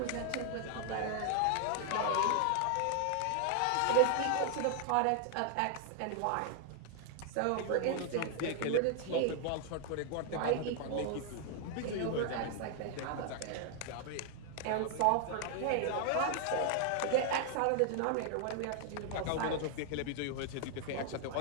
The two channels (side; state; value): both; different; correlation 0.00